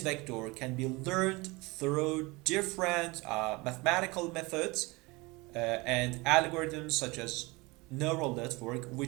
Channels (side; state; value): left; quieter; 24.2 dB